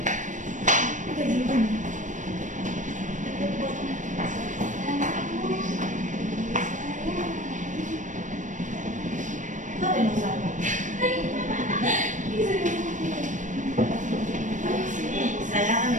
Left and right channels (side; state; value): left; late; 0.37 ms